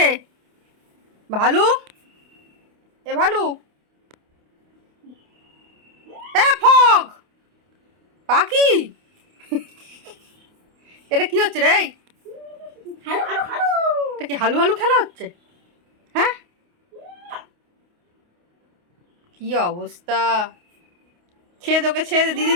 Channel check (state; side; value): late; left; 28 ms